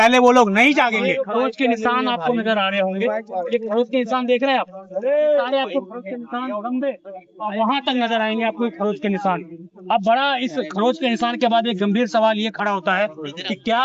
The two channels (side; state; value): both; identical; correlation 1.00